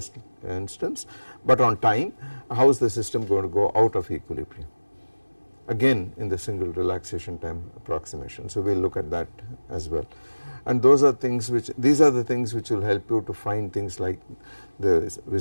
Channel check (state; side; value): inverted; both; correlation -1.00